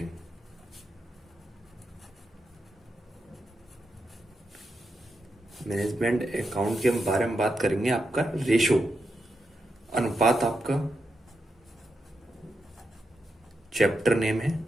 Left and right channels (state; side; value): normal; both; correlation 0.85